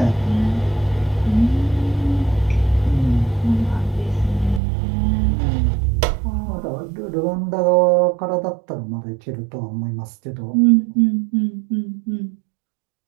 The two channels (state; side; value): drops out; left; at 4.6 s